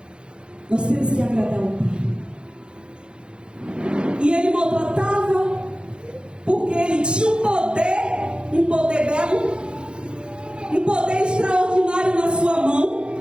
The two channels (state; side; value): late; left; 0.053 ms